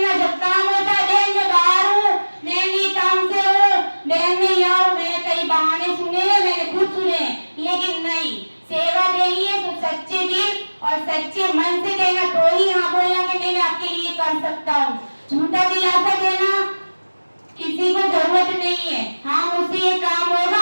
जब काम होता है बहन मैं बाहर हूँ, मैं नहीं काम से हूँ, बहन मैं यहाँ हूँ। मैंने कई बहाने सुने हैं, मैंने खुद सुने, लेकिन नहीं, सेवा देनी है तो सच्चे दिल और सच्चे मन से देना, तो ही हाँ बोलना कि मैं आपके लिए कर सकता हूँ। झूठा दिलासा देना किसी को जरूरत नहीं है। हाँ मुझसे ये काम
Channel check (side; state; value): both; inverted; correlation -1.00